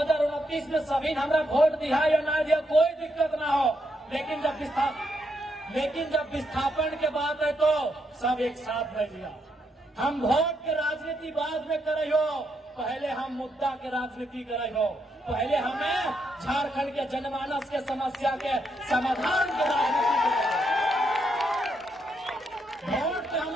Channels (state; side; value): normal; both; correlation 0.79